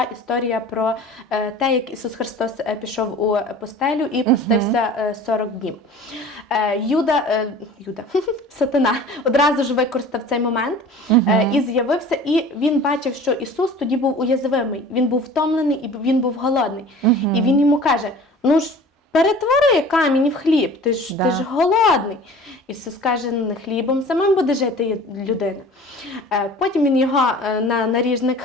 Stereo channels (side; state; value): both; normal; correlation 0.43